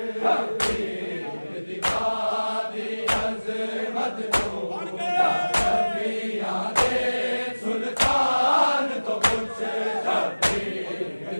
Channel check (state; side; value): inverted; both; correlation -1.00